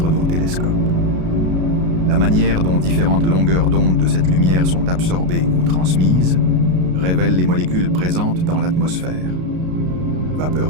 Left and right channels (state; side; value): late; left; 33 ms